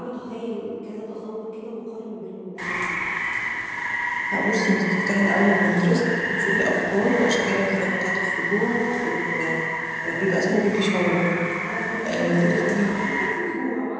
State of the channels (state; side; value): identical; both; correlation 1.00